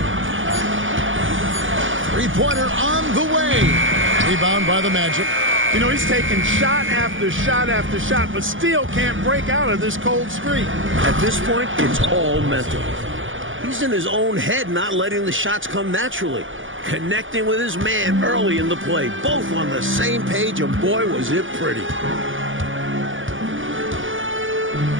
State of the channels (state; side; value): late; left; 0.57 ms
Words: Three-pointer on the way. Rebound by the Magic. You know, he's taking shot after shot after shot, but still can't break out of this cold streak. At this point, it's all mental. He's in his own head, not letting the shots come naturally. Connecting with his man early in the play. Both on the same page, and boy, was it pretty.